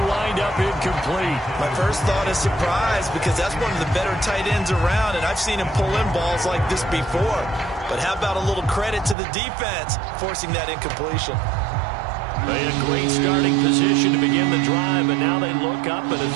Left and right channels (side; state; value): left; drops out; at 9.2 s